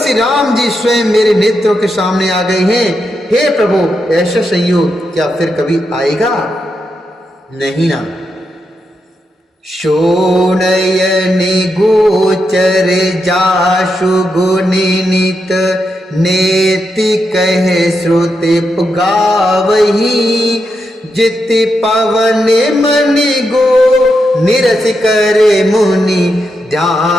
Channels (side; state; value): both; normal; correlation 0.84